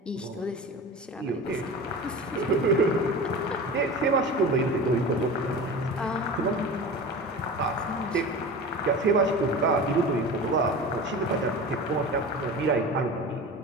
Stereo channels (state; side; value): normal; both; correlation 0.32